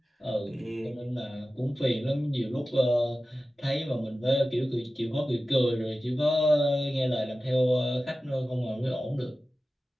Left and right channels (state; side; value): normal; both; correlation 0.95